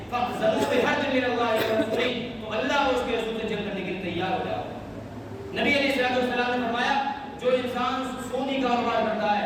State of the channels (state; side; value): identical; both; correlation 1.00